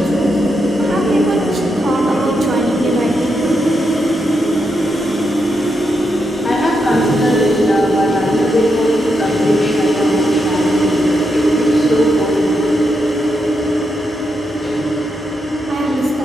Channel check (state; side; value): normal; both; correlation 0.82